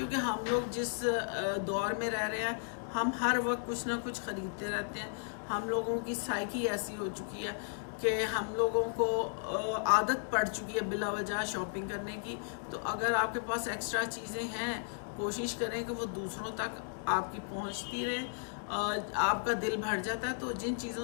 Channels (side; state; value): right; silent; digital silence